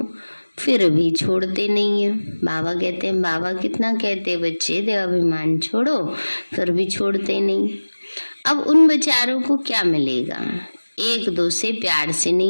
फिर भी छोड़ते नहीं है। बाबा कहते हैं, बाबा कितना कहते बच्चे देह अभिमान छोड़ो, फिर भी छोड़ते नहीं। अब उन बेचारों को क्या मिलेगा, एक दो से प्यार से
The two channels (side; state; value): both; inverted; correlation -1.00